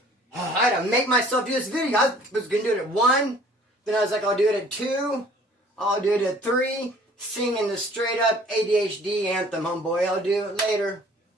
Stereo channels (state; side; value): normal; both; correlation 0.53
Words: I had to make myself do this video. I was going to do it at 1. Then I was like, I'll do it at 2. I'll do it at 3. Singing the straight up ADHD anthem, homeboy. I'll do it later.